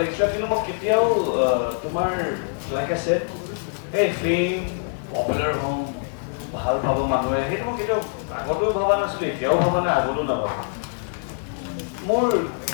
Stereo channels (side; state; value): right; silent; digital silence